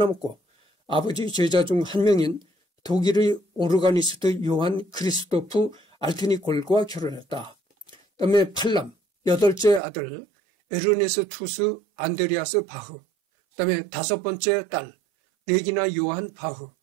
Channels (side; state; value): left; drops out; at 9.8 s